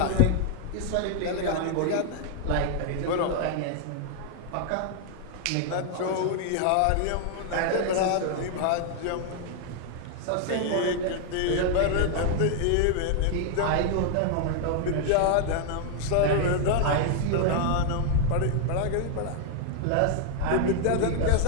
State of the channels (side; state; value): both; different; correlation 0.00